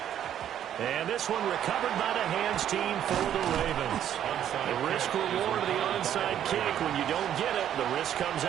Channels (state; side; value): quieter; left; 10.4 dB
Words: And this one recovered by the hands team for the Ravens. The risk-reward of the onside kick, when you don't get it, the risk comes